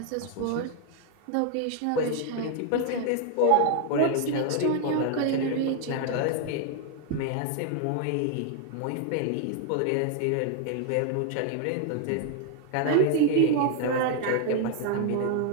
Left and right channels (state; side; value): different; both; correlation 0.00